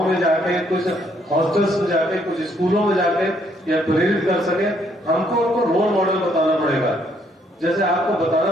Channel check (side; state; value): both; normal; correlation 0.69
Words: में जाके कुछ हॉस्टल्स में जाके, कुछ स्कूलों में जाके या प्रेरित कर सके, हमको उनको रोल मॉडल बताना पड़ेगा। जैसे आपको बताना